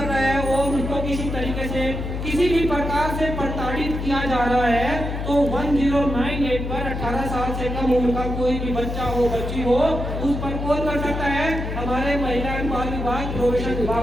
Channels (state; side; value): noise; left; hum, 4 dB below the sound